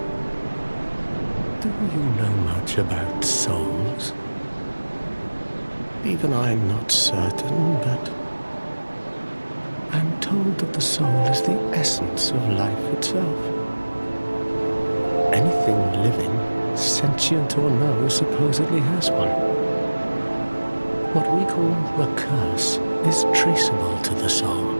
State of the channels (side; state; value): both; inverted; correlation -1.00